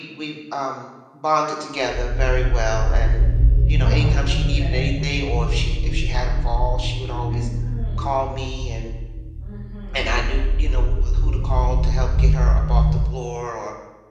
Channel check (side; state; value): both; identical; correlation 1.00